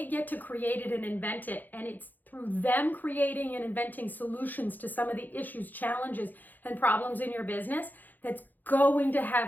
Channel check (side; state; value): right; late; 0.085 ms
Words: get to create it and invent it. And it's through them creating and inventing solutions to some of the issues, challenges, and problems in your business that's going to